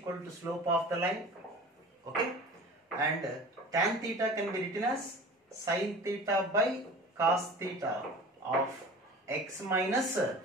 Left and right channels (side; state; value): both; normal; correlation 0.39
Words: to slope of the line. Okay, and tan theta can be written as sin theta by cos theta of x minus